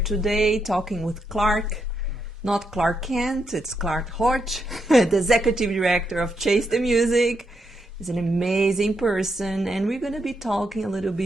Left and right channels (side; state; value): both; normal; correlation 0.81